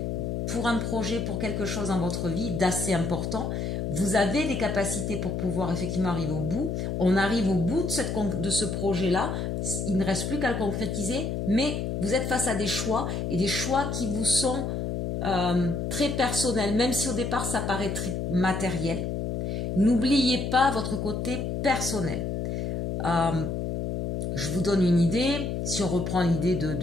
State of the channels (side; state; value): left; noise; hum, 2 dB below the sound